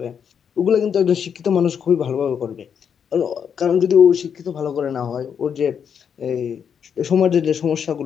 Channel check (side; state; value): right; quieter; 7.5 dB